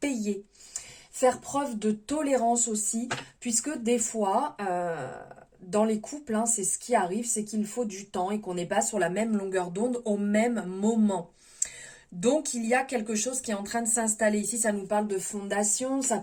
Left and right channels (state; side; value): identical; both; correlation 1.00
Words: Faire preuve de tolérance aussi, puisque des fois, dans les couples, hein, c'est ce qui arrive, c'est qu'il faut du temps et qu'on n'est pas sur la même longueur d'onde au même moment. Donc, il y a quelque chose qui est en train de s'installer. Ici, ça nous parle de fondation, ça